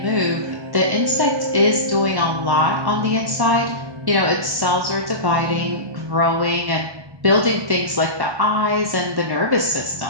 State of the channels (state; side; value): late; left; 1.1 ms